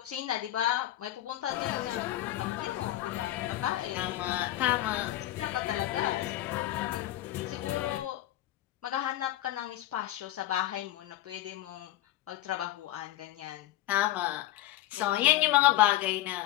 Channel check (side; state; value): right; quieter; 14.4 dB